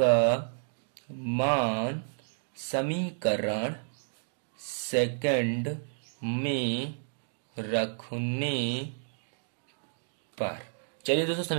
मान समीकरण सेकंड में रखने पर, चलिए दोस्तों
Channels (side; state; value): left; silent; digital silence